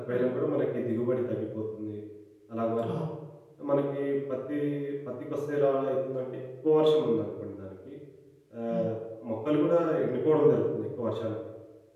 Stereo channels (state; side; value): identical; both; correlation 1.00